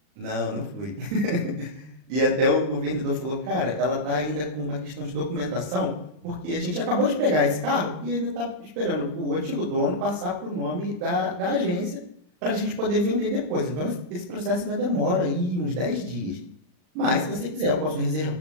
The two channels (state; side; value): late; left; 39 ms